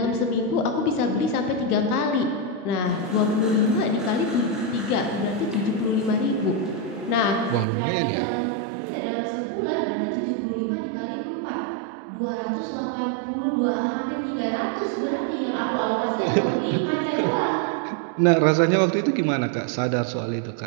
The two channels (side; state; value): left; drops out; at 7.7 s